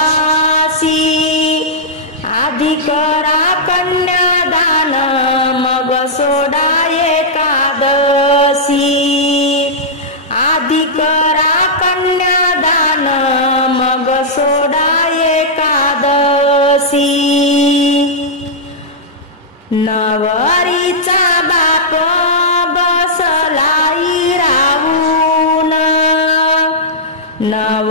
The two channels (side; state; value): both; normal; correlation -0.10